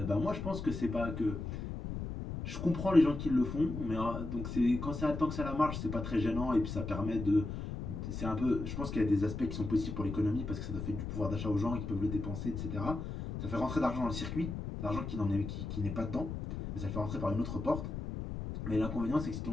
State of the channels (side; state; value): left; noise; rumble, 6 dB below the sound